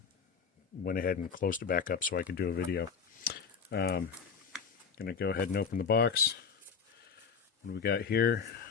went ahead and closed it back up so I could do a video. Gonna go ahead and open the box. What do we got here?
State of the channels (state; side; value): quieter; right; 6.2 dB